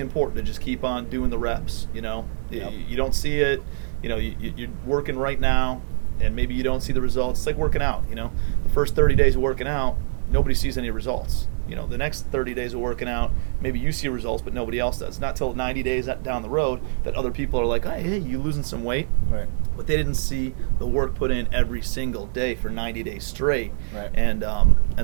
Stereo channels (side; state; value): left; silent; 63 dB below the other